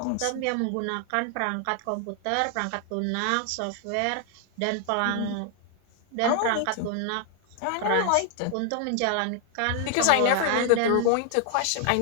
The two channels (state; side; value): different; both; correlation 0.00